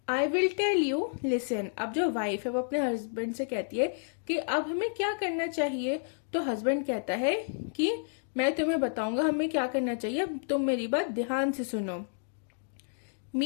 I will tell you, listen. अब जो वाइफ है वो अपने हस्बैंड से कहती है कि अब हमें क्या करना चाहिए। तो हस्बैंड कहता है कि मैं तुम्हें बताऊंगा हमें क्या करना चाहिए, अब तुम मेरी बात ध्यान से सुनो।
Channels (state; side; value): silent; right; digital silence